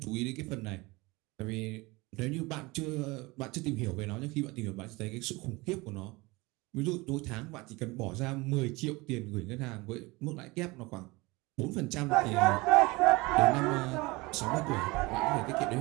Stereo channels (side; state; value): left; quieter; 23.4 dB